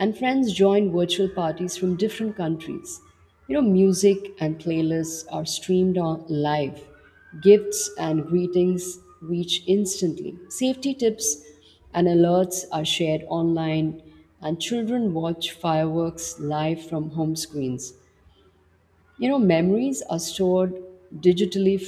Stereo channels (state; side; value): identical; both; correlation 1.00